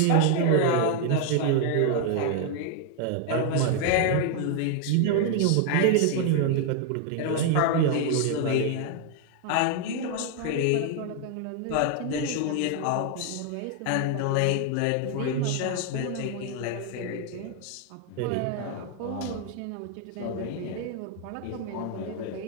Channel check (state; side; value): different; both; correlation 0.00